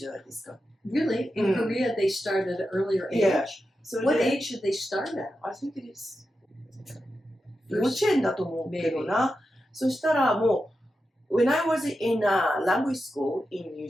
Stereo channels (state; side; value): normal; both; correlation 0.90